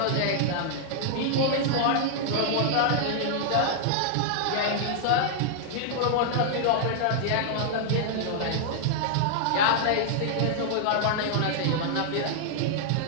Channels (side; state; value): both; different; correlation -0.01